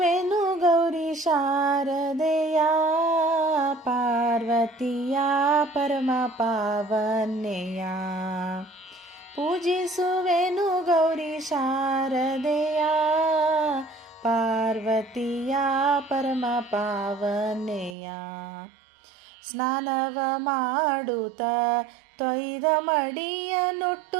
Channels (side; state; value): left; drops out; at 17.9 s